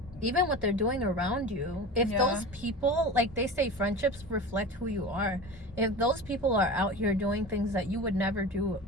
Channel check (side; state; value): both; normal; correlation 0.32